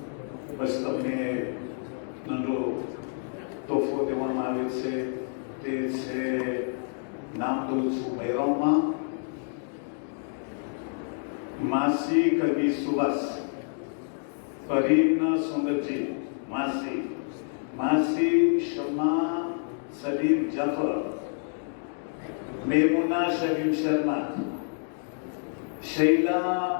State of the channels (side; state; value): right; silent; 59 dB below the other